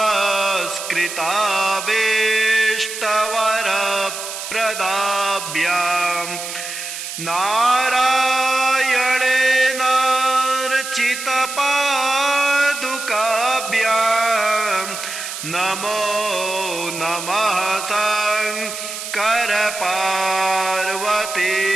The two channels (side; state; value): right; noise; hiss, 8 dB below the sound